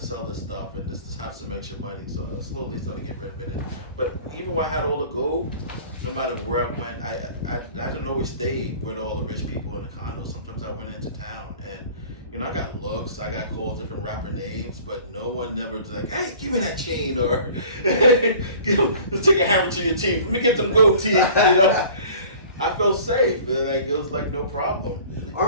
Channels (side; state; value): both; inverted; correlation -0.46